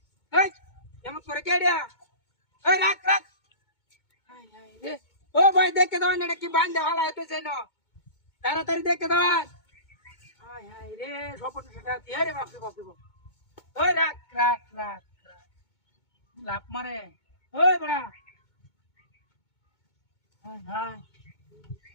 ওই এমন করে কেডিয়া ওই রাখ রাখ হাই হাই রে ও ভাই দেখে দাও এটা কি বান্ধে হালাতে সেনো তাড়াতাড়ি দেখে দাও হাই হাই রে সপন সেটা দিয়ে রে বাপ রে বাপ রে বাপ ওই রাখ রাখ রাখ লাভ মারে ওই বড়া হাই হাই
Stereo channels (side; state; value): right; late; 2.2 ms